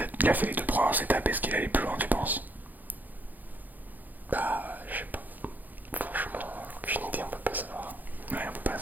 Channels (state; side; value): late; left; 0.084 ms